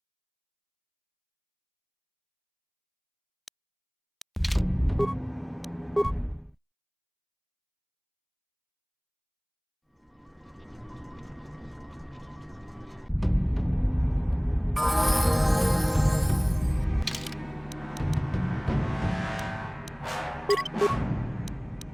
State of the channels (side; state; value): both; identical; correlation 1.00